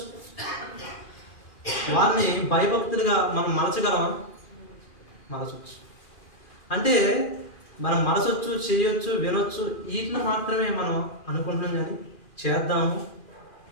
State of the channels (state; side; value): late; right; 2.4 ms